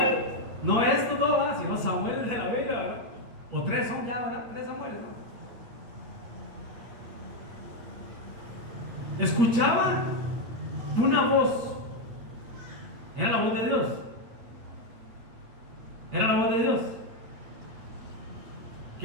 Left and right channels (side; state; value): left; late; 8.9 ms